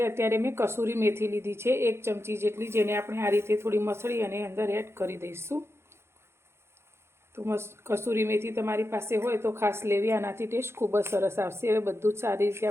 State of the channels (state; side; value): late; left; 0.12 ms